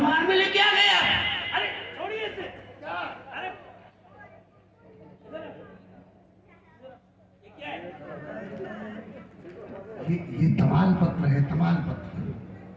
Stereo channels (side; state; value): both; identical; correlation 1.00